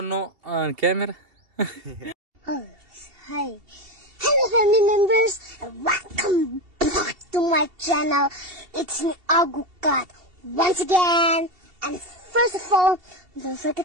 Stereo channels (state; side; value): late; left; 2.7 ms